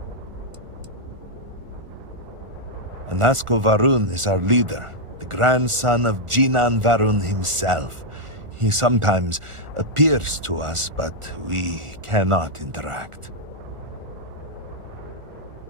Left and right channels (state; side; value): late; left; 1.4 ms